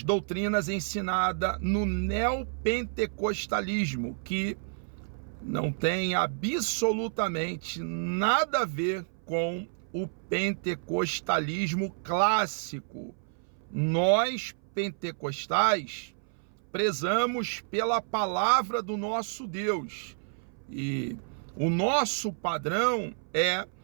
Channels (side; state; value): left; silent; 58 dB below the other